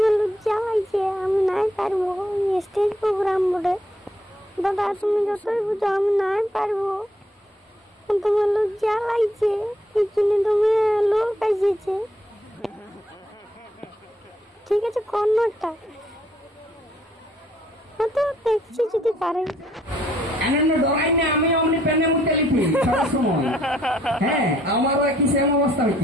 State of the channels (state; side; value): normal; both; correlation 0.68